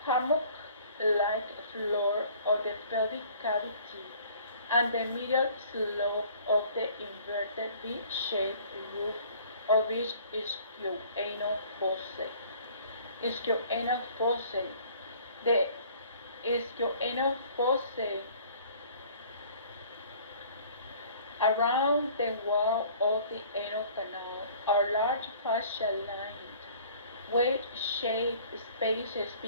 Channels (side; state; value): both; inverted; correlation -0.52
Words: hammock-like floor of the pelvic cavity and the medial slope of the inverted V-shaped roof of each ischioanal fossa. The ischioanal fossa around the wall of the anal canal are large fascia-lined, wedge-shaped spaces